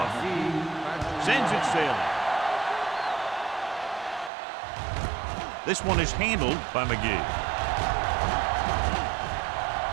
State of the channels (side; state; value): left; drops out; at 4.3 s